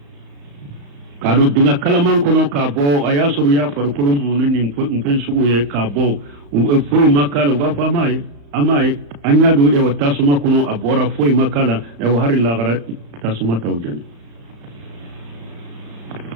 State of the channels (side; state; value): left; late; 35 ms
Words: kado dinga kalaman kono ka bo ayasuru ya farkulum munin nin fen sugu ye ka bo fo makala wa fa mai amai anya do e wata suma kono abora fo makala e wa hari la gara tasuma tawjani